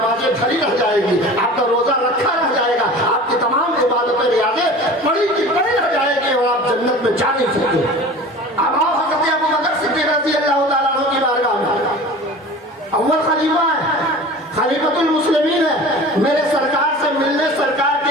کھڑی رہ جائے گی، آپ کا روزہ رکھا رہ جائے گا، آپ کی تمام عبادتیں ریاضیں پڑی کی پڑی رہ جائے گی اور آپ جنت میں جا نہیں سکتے۔ اب آؤ حضرت ابو بکر صدیق رضی اللہ تعالیٰ عنہ کی بارگاہ میں، اول خلیفہ ہے، خلیفۃ المسلمین ہے، میرے سرکار سے ملنے سرکار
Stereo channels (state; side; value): normal; both; correlation 0.39